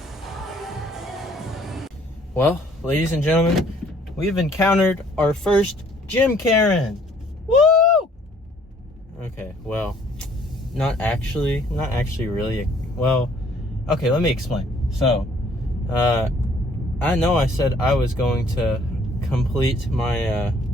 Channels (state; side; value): normal; both; correlation 0.60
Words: Well, ladies and gentlemen, we've encountered our first gym Karen. Woo! Okay, well, not actually really. Well, okay, let me explain. So, I know I said I was going to complete my,